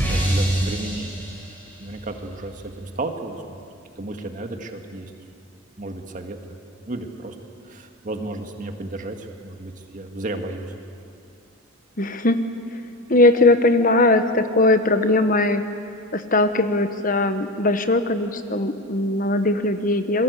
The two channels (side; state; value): both; normal; correlation 0.26